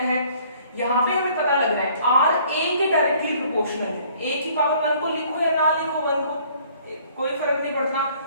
है। यहाँ पे हमें पता लग रहा है R A के डायरेक्टली प्रोपोर्शनल है। A की पावर 1 को लिखो या ना लिखो 1 को, कोई फर्क नहीं पड़ता।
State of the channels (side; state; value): both; inverted; correlation -0.58